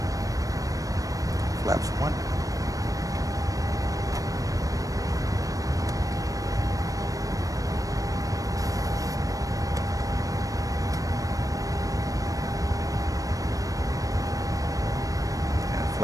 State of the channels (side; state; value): left; late; 0.16 ms